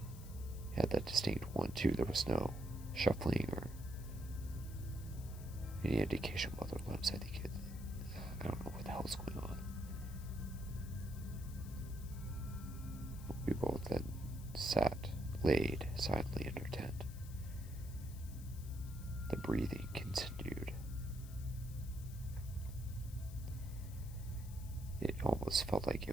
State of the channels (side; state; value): left; noise; hiss, 18 dB below the sound